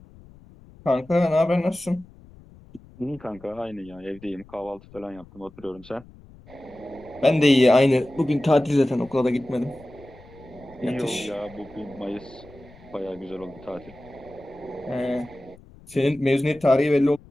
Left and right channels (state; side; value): noise; left; rumble, 23 dB below the sound